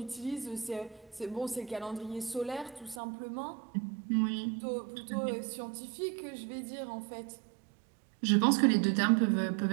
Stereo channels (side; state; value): left; drops out; at 3.0 s